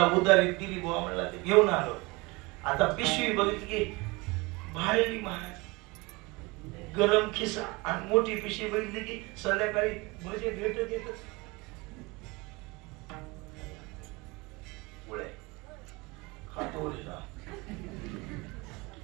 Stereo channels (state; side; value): quieter; left; 24.6 dB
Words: उदारी दिली बुवा म्हणला ते घेऊन आलो. आता पिशवी बघितली की भारी महाराज गरम खिसा आणि मोठी पिशी बघितली की संध्याकाळी भजे भेटत येतच पुढे खातो